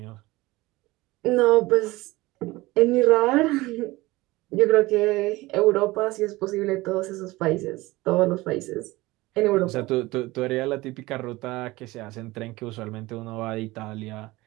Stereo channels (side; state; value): left; quieter; 20.2 dB